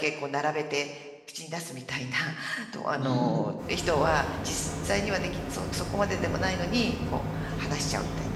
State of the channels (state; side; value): identical; both; correlation 1.00